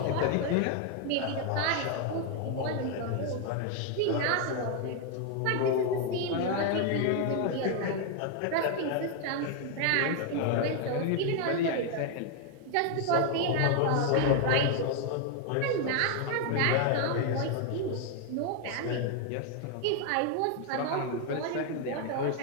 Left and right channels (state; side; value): different; both; correlation 0.01